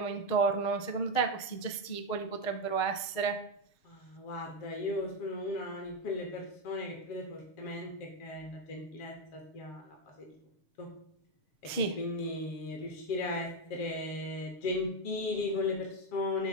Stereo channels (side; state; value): right; late; 6.5 ms